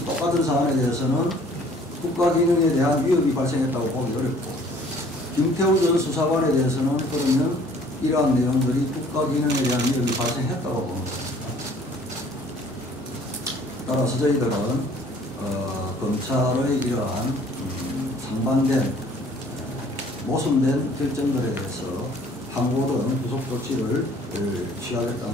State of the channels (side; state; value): both; normal; correlation 0.55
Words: 똑같은 사안에 대해서는 국가기능에 대한 위협이 발생했다고 보기 어렵고, 김태우 전 수사관에 대해서는 그러면 이러한 내용들이 국가기능에 대한 위협이 발생했다고 보는 것입니다. 따라서 저희들은 검찰의 이러한 상반된 모순된 결정들에 대해서 항고든 구속 조치를